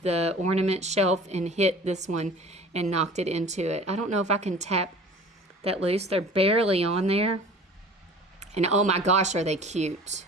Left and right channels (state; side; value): normal; both; correlation 0.44